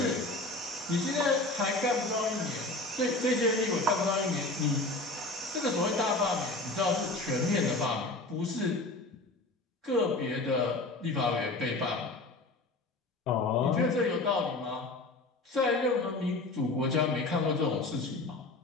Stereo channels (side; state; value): right; quieter; 3.0 dB